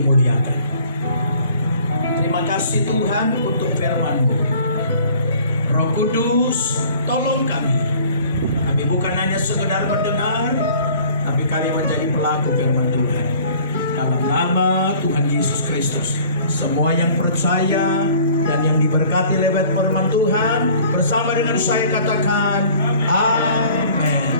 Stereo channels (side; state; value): both; inverted; correlation -0.51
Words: Terima kasih Tuhan untuk firman-Mu. Roh Kudus, tolong kami. Kami bukan hanya sekedar mendengar, tapi kami menjadi pelaku firman Tuhan. Dalam nama Tuhan Yesus Kristus, semua yang percaya dan yang diberkati lewat firman Tuhan, bersama dengan saya katakan, amin.